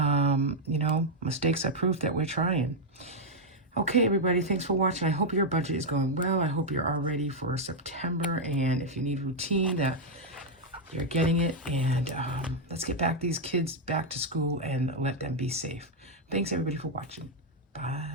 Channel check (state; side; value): normal; both; correlation -0.01